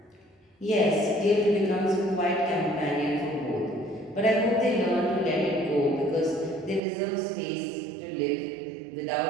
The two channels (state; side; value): drops out; left; at 6.8 s